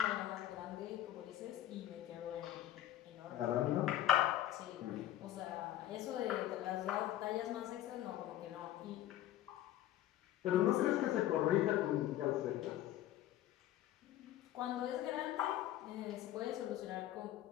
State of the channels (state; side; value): quieter; right; 13.0 dB